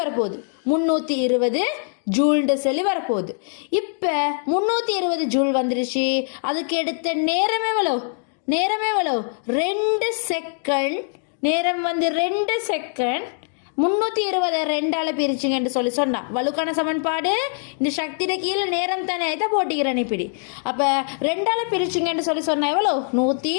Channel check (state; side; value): silent; right; 60 dB below the other